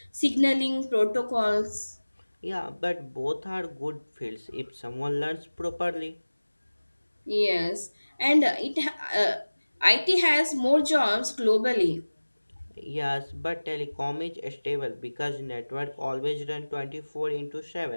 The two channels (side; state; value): both; inverted; correlation -1.00